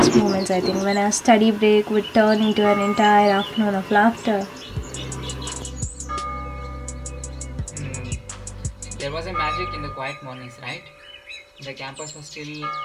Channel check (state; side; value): identical; both; correlation 1.00